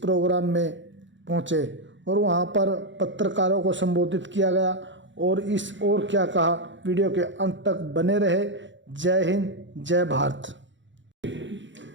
में पहुंचे और वहां पर पत्रकारों को संबोधित किया गया। और क्या कहा, वीडियो के अंत तक बने रहे। जय हिंद, जय भारत।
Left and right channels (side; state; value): left; late; 0.54 ms